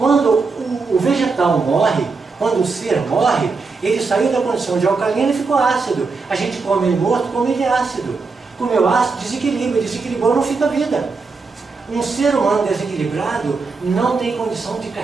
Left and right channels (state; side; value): quieter; left; 4.4 dB